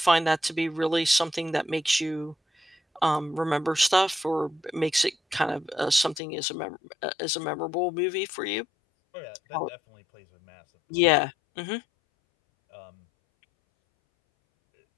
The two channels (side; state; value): right; drops out; at 6.2 s